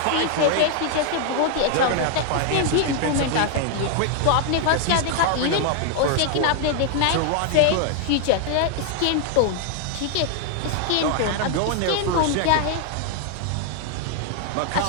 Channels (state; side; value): different; both; correlation 0.00